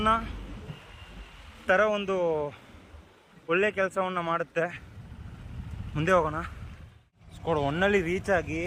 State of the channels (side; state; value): both; identical; correlation 1.00